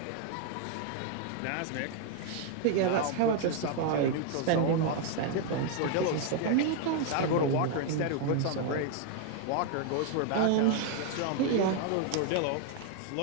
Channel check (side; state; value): both; different; correlation 0.00